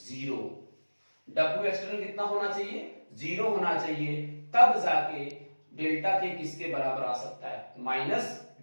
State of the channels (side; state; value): both; inverted; correlation -1.00